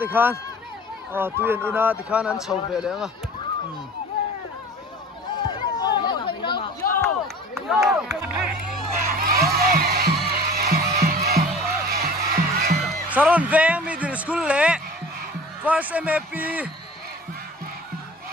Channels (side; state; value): both; normal; correlation 0.42